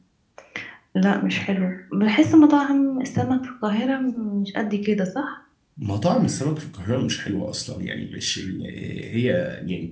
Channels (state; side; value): identical; both; correlation 1.00